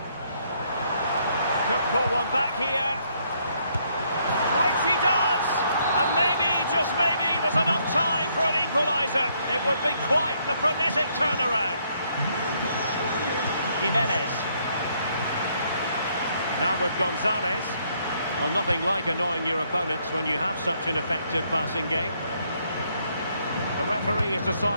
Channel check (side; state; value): both; inverted; correlation -0.70